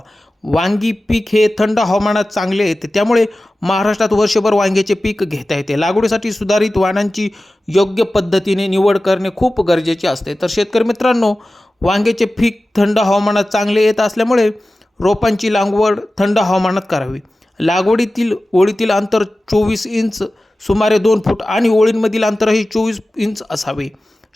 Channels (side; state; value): both; normal; correlation 0.96